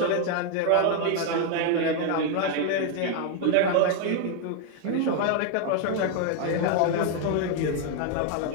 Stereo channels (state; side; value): different; both; correlation 0.01